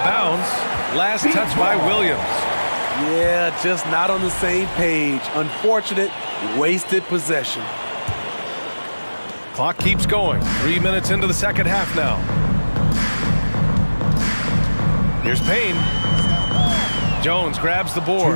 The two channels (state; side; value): inverted; both; correlation -1.00